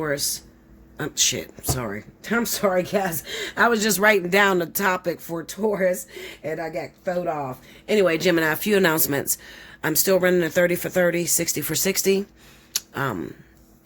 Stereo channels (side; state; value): both; identical; correlation 1.00